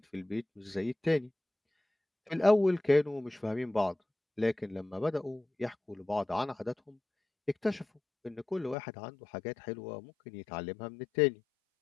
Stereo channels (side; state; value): right; drops out; at 8.8 s